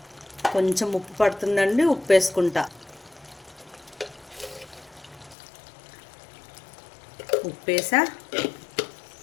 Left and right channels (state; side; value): drops out; right; at 5.4 s